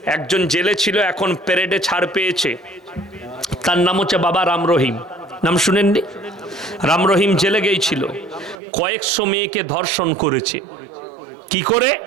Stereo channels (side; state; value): left; drops out; at 8.6 s